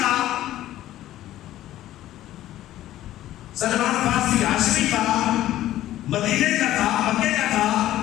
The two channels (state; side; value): quieter; right; 13.9 dB